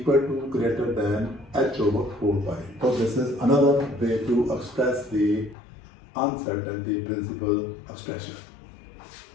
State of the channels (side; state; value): right; drops out; at 5.6 s